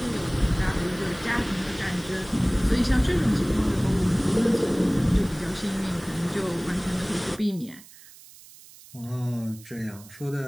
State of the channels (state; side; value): noise; right; hiss, 21 dB below the sound